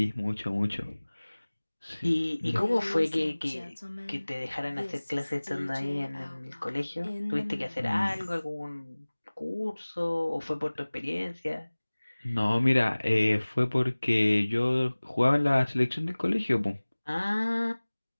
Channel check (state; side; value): inverted; both; correlation -1.00